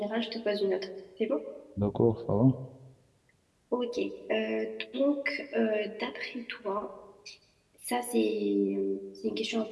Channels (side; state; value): both; identical; correlation 1.00